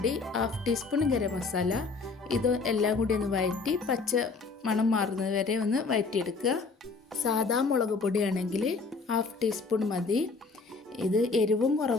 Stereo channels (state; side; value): quieter; right; 4.3 dB